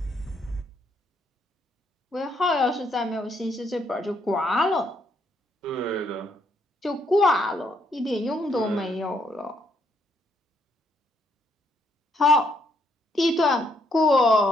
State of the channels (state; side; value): normal; both; correlation 0.73